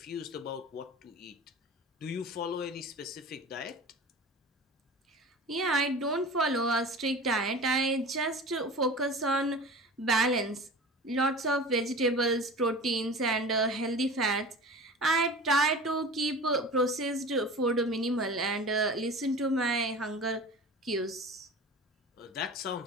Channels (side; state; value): both; normal; correlation 0.35